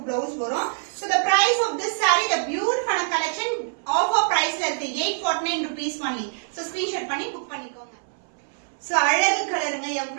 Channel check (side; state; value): left; silent; 62 dB below the other